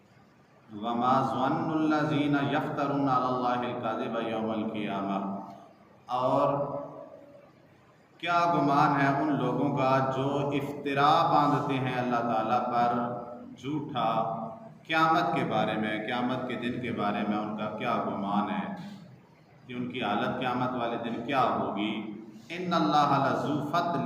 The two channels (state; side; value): identical; both; correlation 1.00